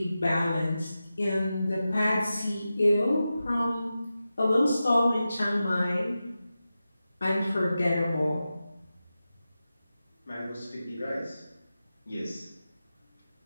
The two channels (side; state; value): both; inverted; correlation -0.93